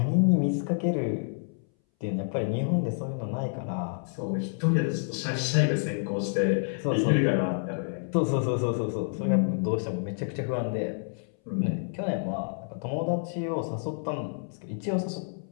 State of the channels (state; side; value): silent; right; 59 dB below the other